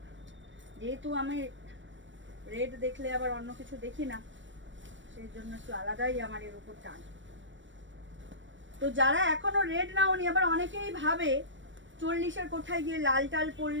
যেহেতু আমি রেড দেখলে আবার অন্য কিছু দেখি না, সেই জন্য একটু আলাদাই আমার এর উপর টান। তো যারা এখনো রেড নাওনি, আবার অনেকেই ভাবে 40-এর কোঠায় গিয়ে লাল টাল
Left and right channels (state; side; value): late; left; 0.55 ms